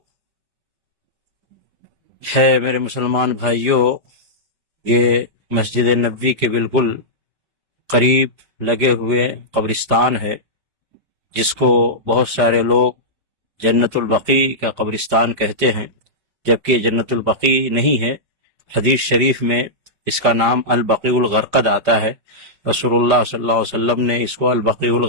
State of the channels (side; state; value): left; late; 5.0 ms